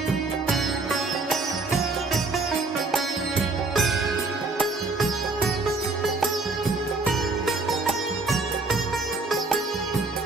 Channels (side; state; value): left; quieter; 3.5 dB